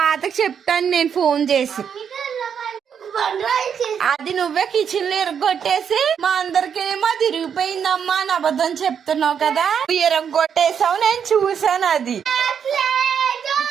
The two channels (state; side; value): quieter; left; 7.6 dB